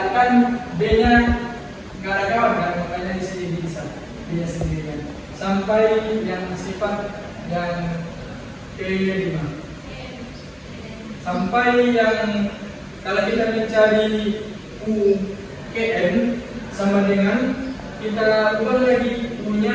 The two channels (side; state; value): both; identical; correlation 1.00